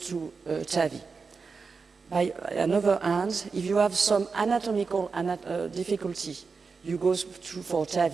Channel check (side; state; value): left; quieter; 4.9 dB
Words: TAVI. By another hand, if you have some anatomical difficulty, you go for